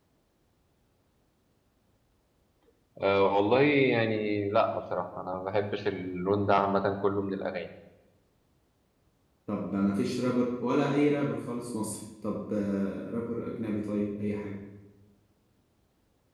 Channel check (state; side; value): identical; both; correlation 1.00